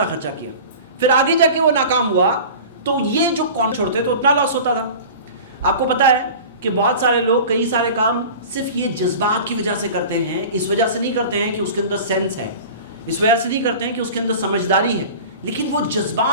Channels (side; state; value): both; inverted; correlation -0.37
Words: خرچہ کیا. پھر آگے جا کے وہ ناکام ہوا تو یہ جو کون چھوڑتے تو اتنا لاس ہوتا تھا. آپ کو پتا ہے کہ بہت سارے لوگ کئی سارے کام صرف یہ جذبات کی وجہ سے کرتے ہیں, اس وجہ سے نہیں کرتے ہیں کہ اس کے اندر سینس ہے, اس وجہ سے نہیں کرتے ہیں کہ اس کے اندر سمجھداری ہے, لیکن وہ